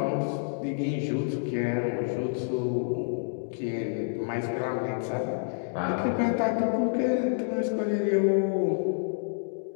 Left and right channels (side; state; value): right; silent; digital silence